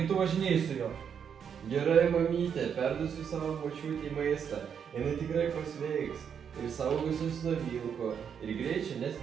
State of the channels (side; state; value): left; quieter; 7.5 dB